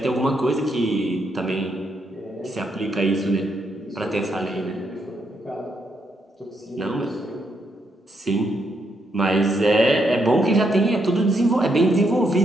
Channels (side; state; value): both; normal; correlation 0.78